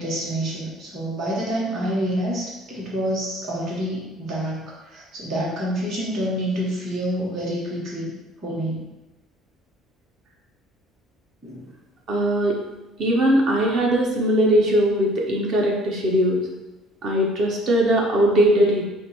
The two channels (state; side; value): normal; both; correlation 0.55